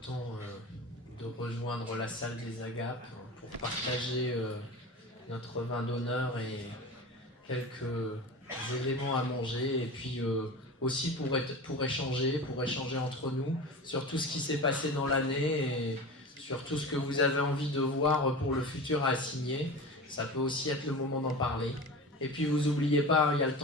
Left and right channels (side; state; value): both; normal; correlation 0.31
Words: temps de rejoindre la salle des Agapes pour partager notre vin d'honneur et quelques éléments à manger, et puis aussi pour échanger entre nous sur tout ce qui s'est passé dans l'année et sur tout ce que vous avez envie de voir pour le futur à signer. Ça peut aussi être le moment d'en parler. Et puis vous n'oubliez pas, il y a le